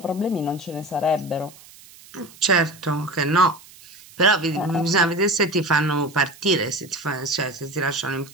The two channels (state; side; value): noise; right; hiss, 22 dB below the sound